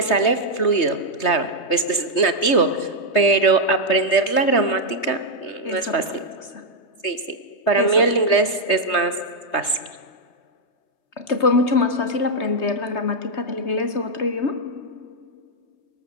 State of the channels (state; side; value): late; right; 3.2 ms